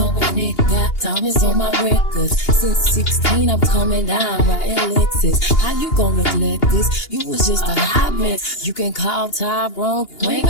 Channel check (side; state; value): right; late; 2.8 ms